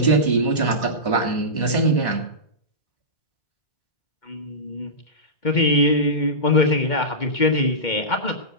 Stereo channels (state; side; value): late; right; 1.1 ms